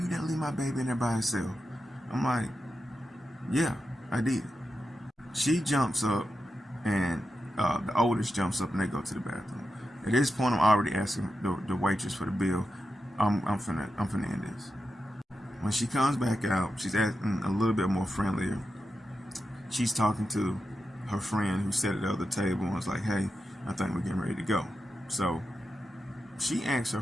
didn't leave my baby in there by herself. I'm like, yeah, I did. She jumps up and the oldest jumps up and they go to the bathroom. At this point, I'm already asking the waitress for the bill. I'm finna end this. When she comes back out, she's acting a little bit more friendlier. She's talking to her friend who sat at the other table and was like, hey, I think we're getting ready to go. So she asks her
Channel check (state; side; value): normal; both; correlation 0.89